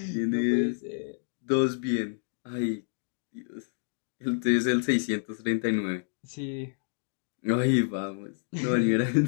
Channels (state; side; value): silent; right; digital silence